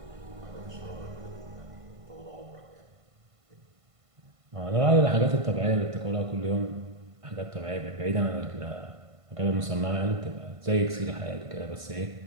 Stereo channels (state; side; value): late; left; 1.5 ms